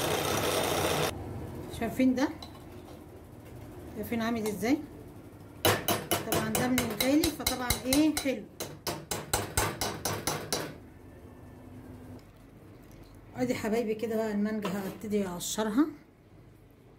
شايفين ده؟ شايفين عامل ازاي؟ طبعا ده من الغالي فطبعا ايه حلو. ادي حبايبي كده بقى المانجا هبتدي اقشرها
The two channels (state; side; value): identical; both; correlation 1.00